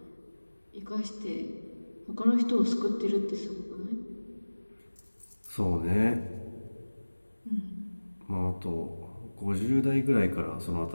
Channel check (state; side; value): inverted; both; correlation -1.00